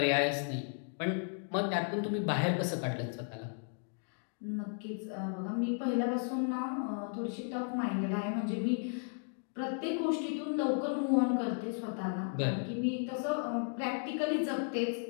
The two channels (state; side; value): silent; right; 55 dB below the other